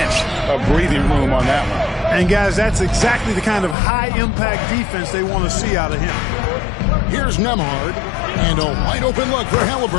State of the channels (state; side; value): drops out; right; at 3.8 s